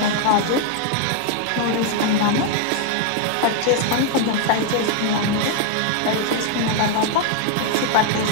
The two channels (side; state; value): both; different; correlation 0.00